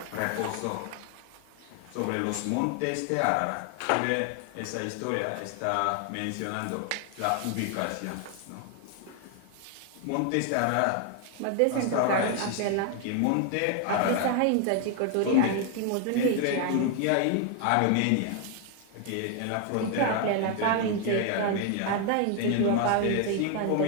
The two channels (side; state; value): both; different; correlation 0.00